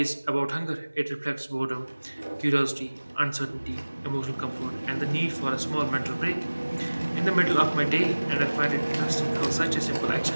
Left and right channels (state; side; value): inverted; both; correlation -1.00